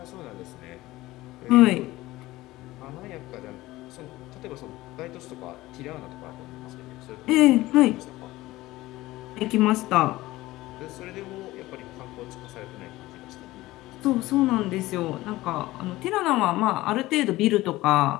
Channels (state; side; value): quieter; right; 18.0 dB